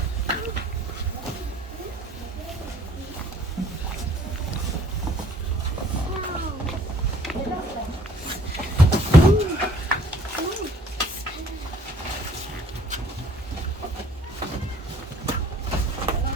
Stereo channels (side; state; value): both; normal; correlation 0.57